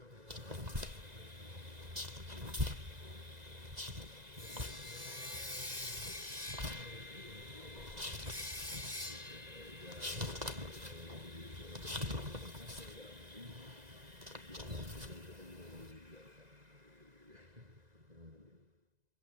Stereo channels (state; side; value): late; left; 2.0 ms